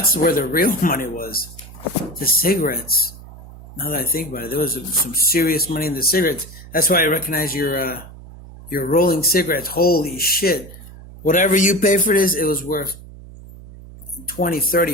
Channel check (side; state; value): right; noise; hum, 17 dB below the sound